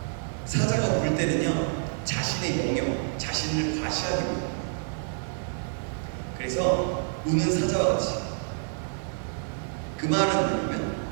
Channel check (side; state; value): left; silent; digital silence